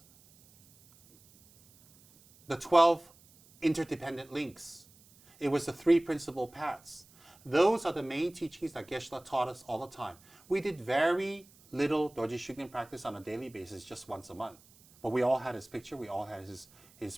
the 12 interdependent links. It was the 3 principal paths. Those are the main teachings that Geshe taught us all the time. We did very little Dorje Shugden practice on a daily basis, just once a month. But we all had his picture, we all had his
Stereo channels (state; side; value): noise; right; hiss, 27 dB below the sound